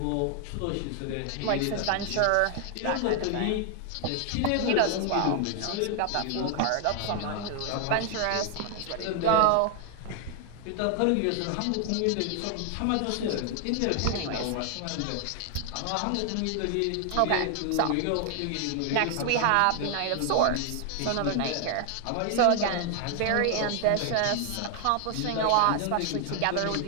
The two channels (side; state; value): both; different; correlation 0.00